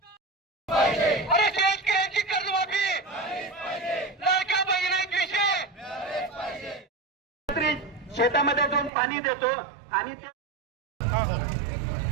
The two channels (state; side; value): drops out; left; at 8.9 s